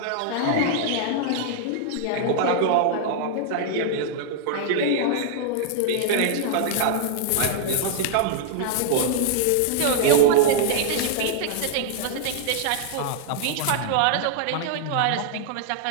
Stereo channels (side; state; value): both; different; correlation -0.01